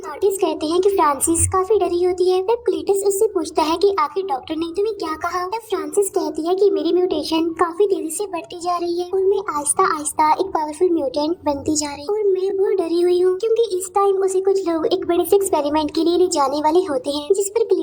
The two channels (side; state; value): both; identical; correlation 1.00